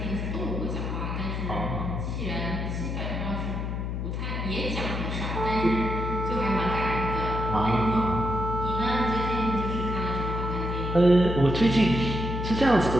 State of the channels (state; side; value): noise; left; hum, 3 dB below the sound